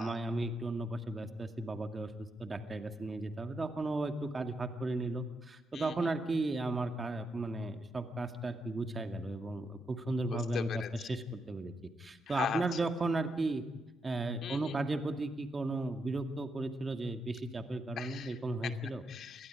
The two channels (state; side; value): normal; both; correlation 0.82